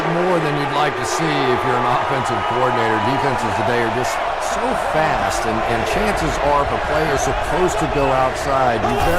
more than you'd like to see if you're an offensive coordinator. Defenses today are just so fast, and chances are if a play is supposed to go outside, you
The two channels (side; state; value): both; identical; correlation 1.00